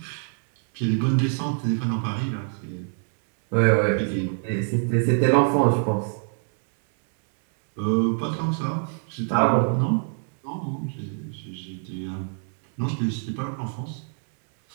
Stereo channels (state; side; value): silent; left; 57 dB below the other